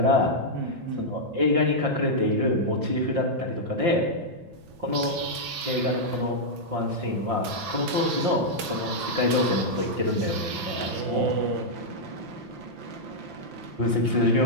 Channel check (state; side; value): late; left; 5.8 ms